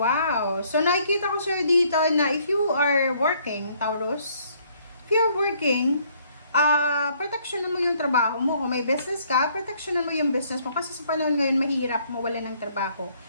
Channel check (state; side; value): inverted; both; correlation -0.65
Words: wow. So, nakikita ko sa'yo dito na if you are working, Taurus, if you're working, protection mo yung trabaho mo. Kung may business ka, protection mo yung business mo. Kasi sa panahon ngayon, mahirap mawala ng trabaho.